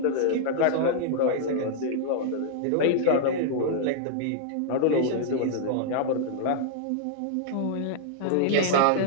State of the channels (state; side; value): different; both; correlation -0.01